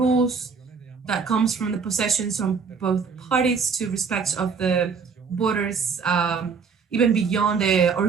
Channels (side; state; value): left; quieter; 5.6 dB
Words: that comes from the possessions from both parties to respect of the borders, even beyond the